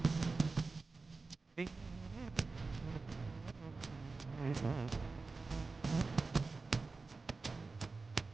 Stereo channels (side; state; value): left; quieter; 3.9 dB